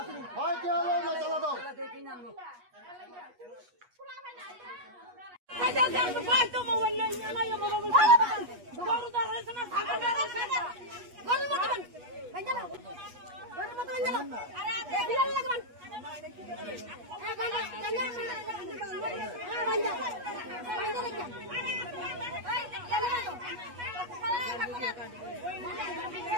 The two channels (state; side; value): late; left; 8.3 ms